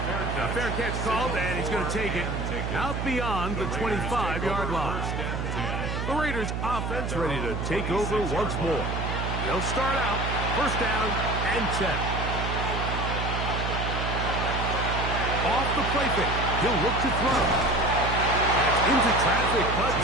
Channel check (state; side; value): noise; right; hum, 3 dB below the sound